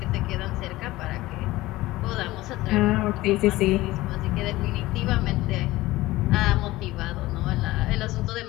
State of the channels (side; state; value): right; quieter; 18.1 dB